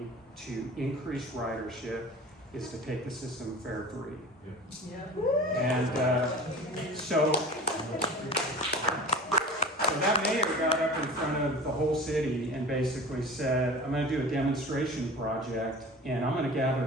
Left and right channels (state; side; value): normal; both; correlation 0.37